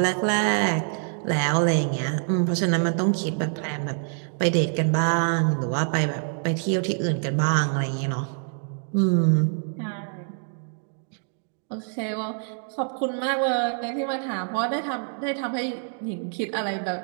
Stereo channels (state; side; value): silent; left; 58 dB below the other